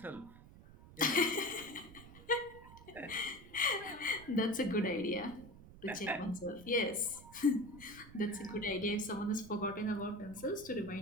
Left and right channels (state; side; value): noise; right; rumble, 18 dB below the sound